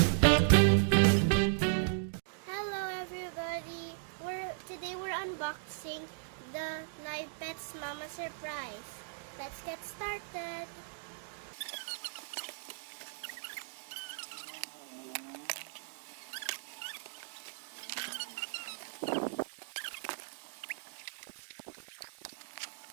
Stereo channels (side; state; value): left; silent; digital silence